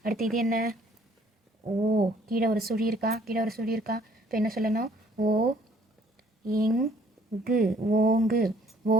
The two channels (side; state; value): both; normal; correlation 0.60